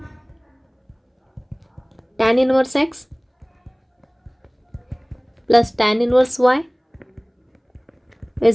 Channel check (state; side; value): identical; both; correlation 1.00